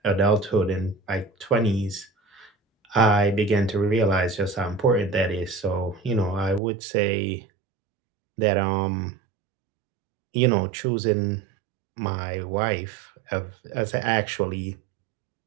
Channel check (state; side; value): drops out; left; at 6.6 s